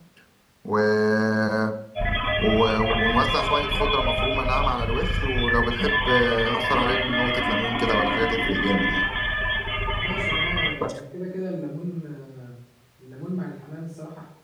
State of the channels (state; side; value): identical; both; correlation 1.00